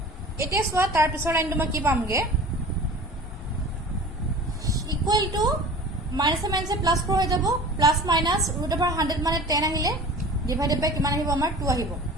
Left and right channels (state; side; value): normal; both; correlation 0.40